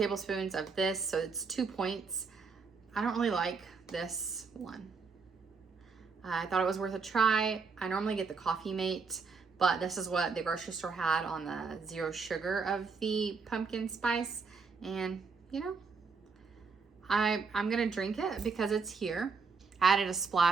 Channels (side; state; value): left; quieter; 5.0 dB